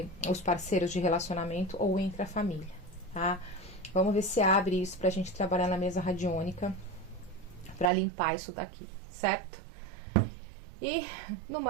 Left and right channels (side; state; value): left; drops out; at 7.9 s